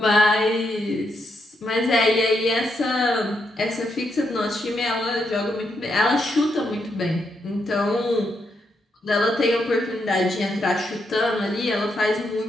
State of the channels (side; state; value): both; normal; correlation 0.80